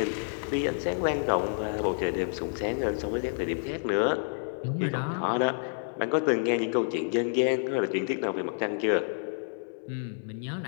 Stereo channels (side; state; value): right; silent; digital silence